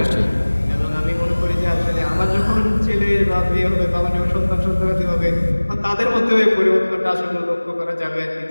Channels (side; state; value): both; inverted; correlation -1.00